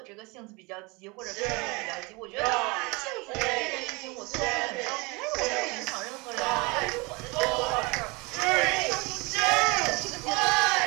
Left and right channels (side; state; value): left; quieter; 26.6 dB